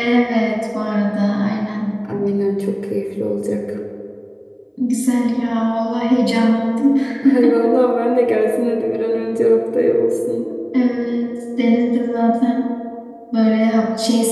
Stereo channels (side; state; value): both; identical; correlation 1.00